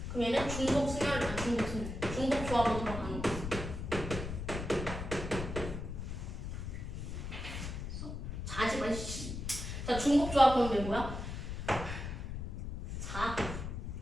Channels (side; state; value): left; noise; rumble, 5 dB below the sound